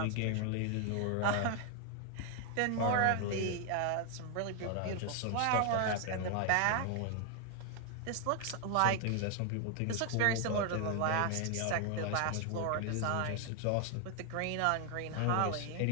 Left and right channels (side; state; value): both; different; correlation 0.00